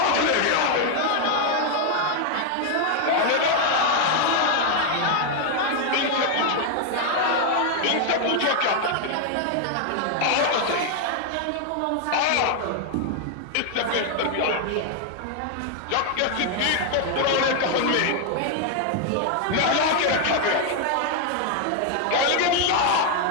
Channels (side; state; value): both; different; correlation 0.00